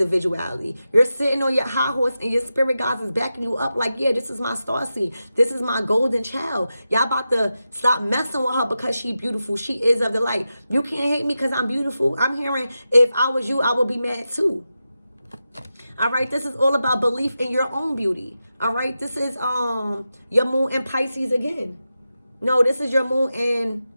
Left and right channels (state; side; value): inverted; both; correlation -0.90